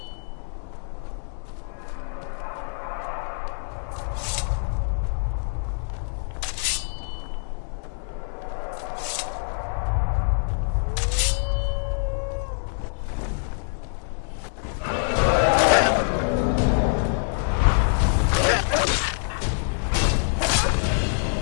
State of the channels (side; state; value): right; silent; 62 dB below the other